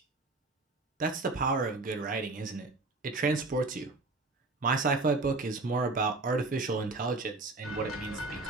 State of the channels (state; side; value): quieter; left; 3.3 dB